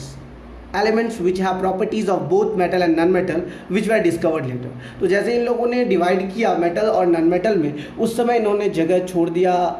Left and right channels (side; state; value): both; identical; correlation 1.00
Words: elements which have properties of both metal and non metal which were discovered later. तो जैसे इन लोगों ने divide किया metal और non metal में, उस समय इन्होंने जगह छोड़ दिया,